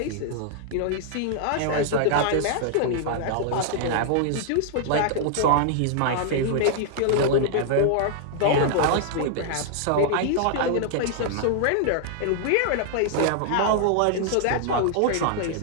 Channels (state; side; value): different; both; correlation -0.01